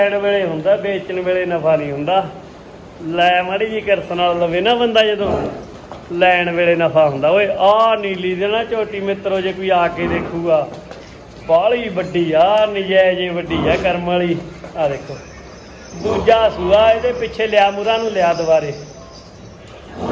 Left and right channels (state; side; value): identical; both; correlation 1.00